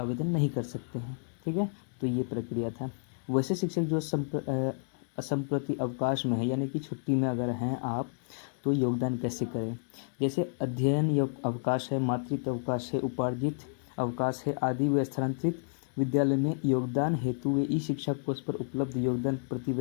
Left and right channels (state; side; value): silent; right; digital silence